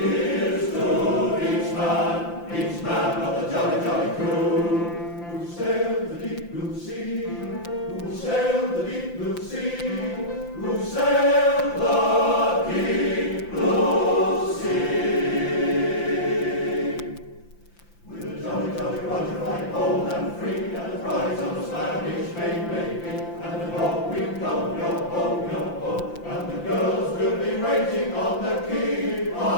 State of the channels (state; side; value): late; right; 5.8 ms